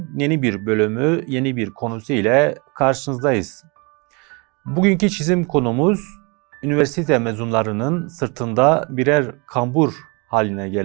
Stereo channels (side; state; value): left; quieter; 30.3 dB